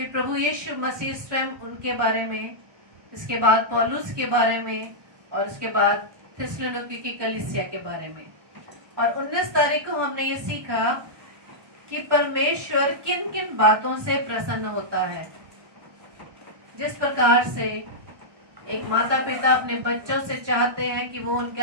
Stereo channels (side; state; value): left; late; 1.2 ms